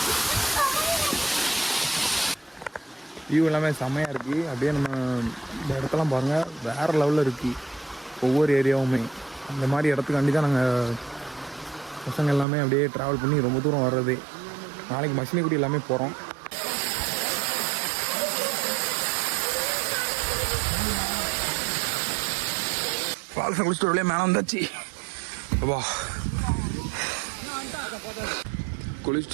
வியூ எல்லாமே செம்மையாக இருக்குது. அப்படியே நம்ம இந்த இடத்தெல்லாம் பாருங்கள், வேறு லெவலில் இருக்குது. ஒவ்வொரு ஏரியாவுமே அந்த மாதிரி இடத்துக்காண்டி தான் நாங்கள் பசங்க எல்லாமே அப்படியே ட்ராவல் பண்ணி ரொம்ப தூரம் வர்றது. நாளைக்கு மசினகுடி எல்லாமே போகிறோம். ஃபால்ஸை குளிச்சுட்டு அப்படியே மேலே வந்தாச்சு. வா,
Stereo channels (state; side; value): drops out; left; at 12.5 s